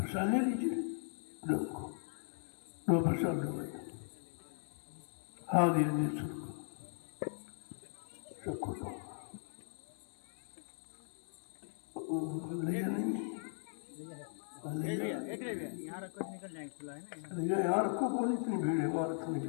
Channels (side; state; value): right; silent; 52 dB below the other